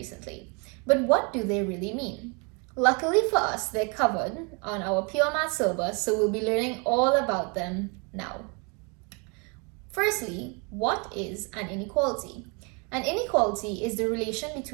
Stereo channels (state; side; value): quieter; left; 32.9 dB